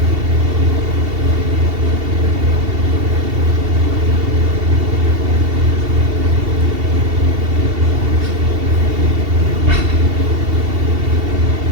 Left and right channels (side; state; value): left; late; 2.7 ms